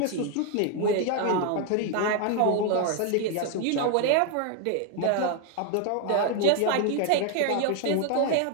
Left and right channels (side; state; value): both; different; correlation 0.01